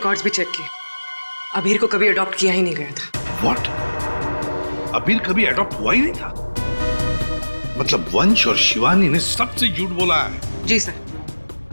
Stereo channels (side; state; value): both; inverted; correlation -1.00